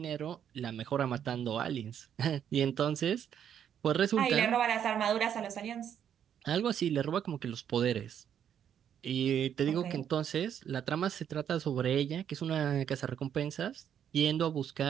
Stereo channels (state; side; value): quieter; left; 9.1 dB